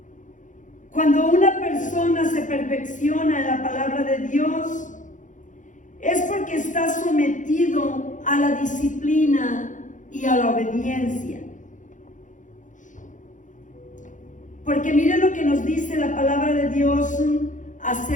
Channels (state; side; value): late; right; 0.37 ms